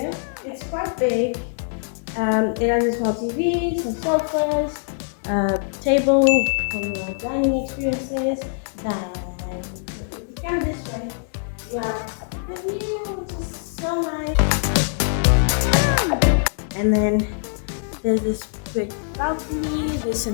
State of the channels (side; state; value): right; silent; digital silence